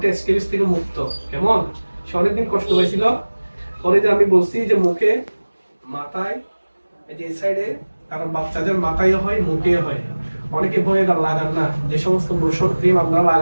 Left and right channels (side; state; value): both; inverted; correlation -1.00